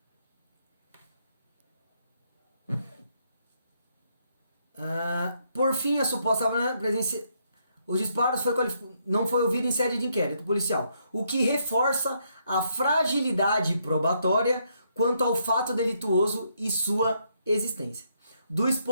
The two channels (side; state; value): both; inverted; correlation -0.75